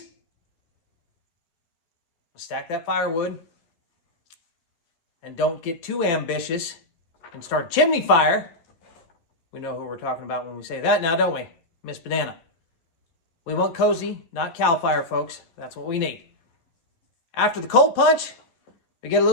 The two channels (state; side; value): late; right; 12 ms